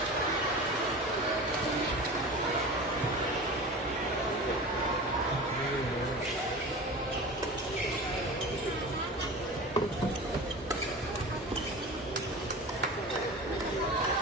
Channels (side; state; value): both; normal; correlation 0.33